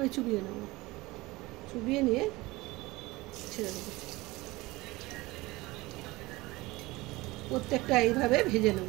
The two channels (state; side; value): quieter; left; 20.9 dB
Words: চুবিয়ে নেব, চুবিয়ে নিয়ে ছেড়ে দেবো। প্রত্যেকটা এইভাবে ভেজে